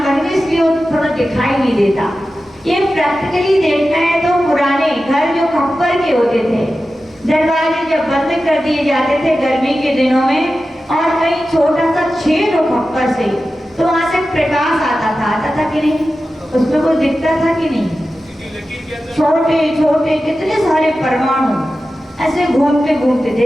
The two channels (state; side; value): normal; both; correlation 0.93